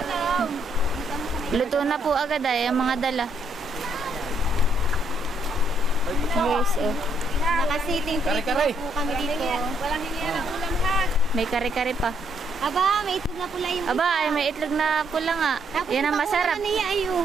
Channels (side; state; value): both; normal; correlation 0.71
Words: Luto na po agad ay ang mga dala. Guys, oh. Nakasiting trip po kami dito. Walang hingihan ng ulam ha. May kare-kare pa. Aba, may itlog na pula yung Aba, ay may itlog na pula nga. Yan ang masarap.